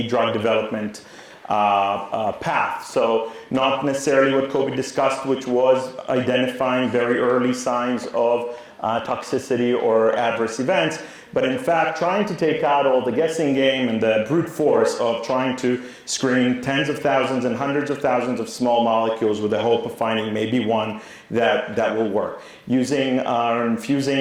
drug development path. So not necessarily what Kobe discussed, which was identifying very early signs of toxicity or adverse events, but in fact trying to take out all the guessing game and the brute force of trying to screen tens of thousands and hundreds of thousands of small molecules with the hope of finding maybe one that will work. Using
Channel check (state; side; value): identical; both; correlation 1.00